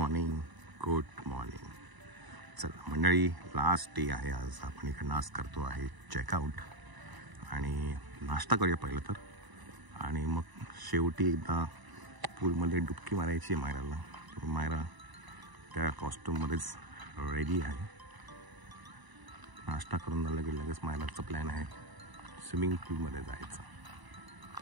morning. चला मंडळी, लास्ट डे आहे आज. आपण इकडं आज करतो आहे चेकआउट आणि नाश्ता करूया पहिलं तर, आणि मग शेवटी एकदा पूलमध्ये डुबकी मारायची आहे मायराला. मायरा त्या कॉस्ट्यूममध्येच रेडी आहे. नाश्ता करून झालं की लगेच मायराचा प्लॅन आहे स्विमिंग पूलमध्ये जायचं.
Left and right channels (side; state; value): left; late; 1.0 ms